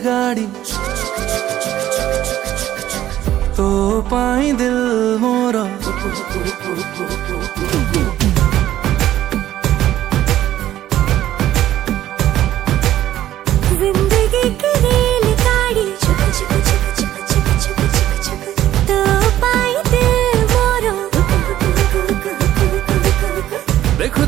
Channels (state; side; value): quieter; left; 13.0 dB